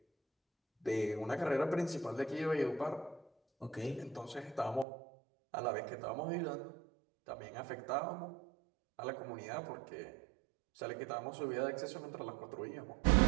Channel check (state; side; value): drops out; left; at 4.9 s